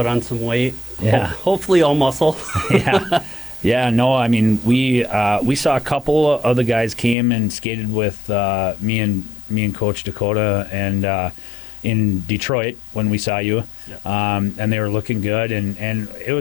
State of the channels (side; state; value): right; drops out; at 7.2 s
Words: on some weight. Yeah. Hopefully all muscle. Yeah, no, I mean, we saw a couple of the guys came and skated with me and Coach Dakota and in Detroit when we saw you. Yeah. And they were looking good, and it